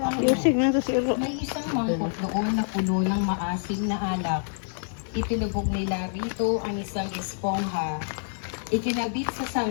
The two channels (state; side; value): silent; right; 60 dB below the other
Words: Yusig na ito si Iro. May isang mangkok doon na puno ng maasim na alak. Itinubog nila rito ang isang espongha. Ikinabit sa